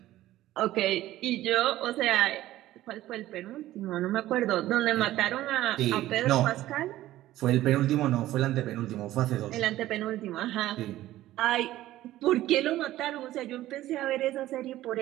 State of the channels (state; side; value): quieter; left; 14.9 dB